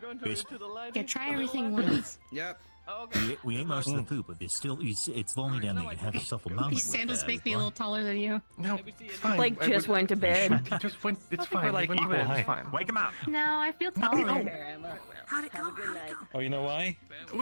to the light. Yeah, try everything once. Yep. Okay. We ate most of the poop, but there's still... It's lonely down there. You can have yourself a moment. These sandals make me a little taller than you. No, it's fine. Blake just went to bed. He just went. It's fine. like He went to equal bed. height. It's fine. Wake him up! No, I feel taller. How'd it go? How'd it go? Oh, you know why?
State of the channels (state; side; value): inverted; both; correlation -1.00